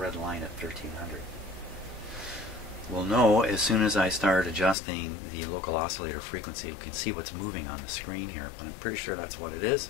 line at 1300. We'll know as soon as I start adjusting the local oscillator frequency. We can see what's moving on the screen here, but I'm pretty sure that's what it is.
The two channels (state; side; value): drops out; right; at 4.8 s